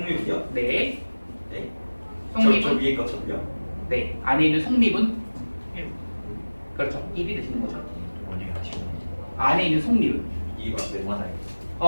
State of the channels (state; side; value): inverted; both; correlation -1.00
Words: 네. 네. 속미분? 저 위에 거처럼요? 네. 안에 있는 속미분? 그렇죠. 1이 되시는 거죠. 원영이 아시고. 안에 있는 속미분. 이거 네.